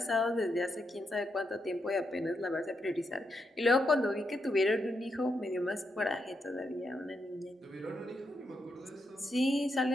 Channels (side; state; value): both; normal; correlation 0.82